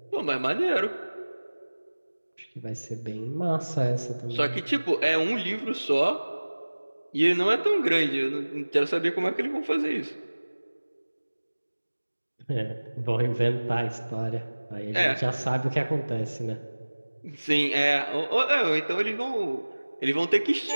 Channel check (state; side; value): inverted; both; correlation -1.00